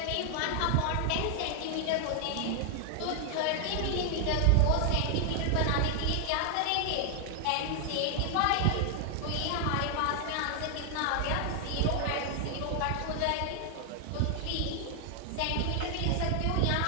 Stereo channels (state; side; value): different; both; correlation 0.00